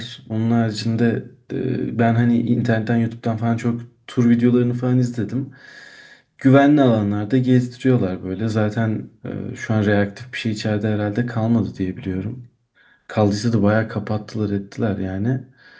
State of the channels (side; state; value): both; identical; correlation 1.00